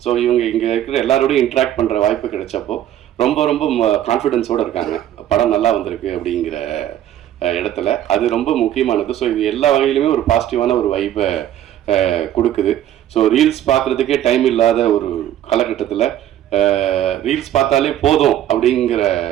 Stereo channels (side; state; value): left; quieter; 11.8 dB